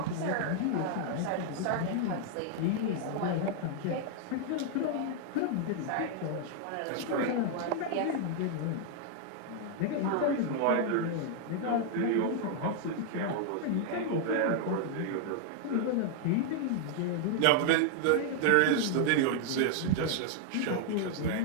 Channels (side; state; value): both; different; correlation 0.00